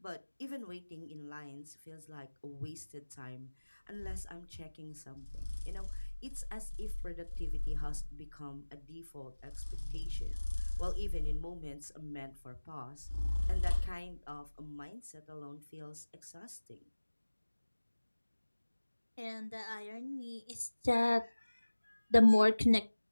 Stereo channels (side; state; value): both; inverted; correlation -1.00